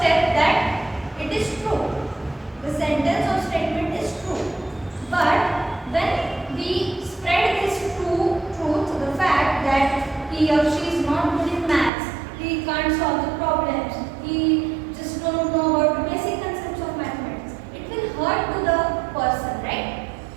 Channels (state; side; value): drops out; left; at 11.9 s